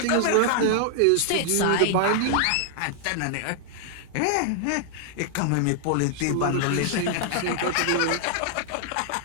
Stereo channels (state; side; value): different; both; correlation 0.00